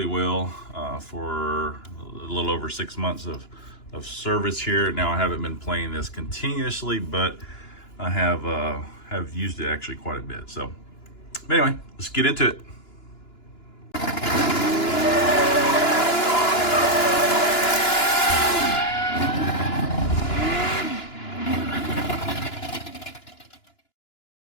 well for a little over 6 months of service here. Now I haven't been playing this continuously, but I have used it actually quite a bit. So anyway, let's get into it.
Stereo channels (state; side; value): late; right; 2.9 ms